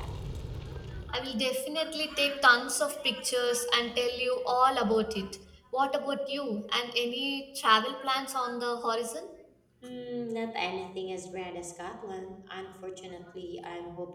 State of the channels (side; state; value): both; identical; correlation 1.00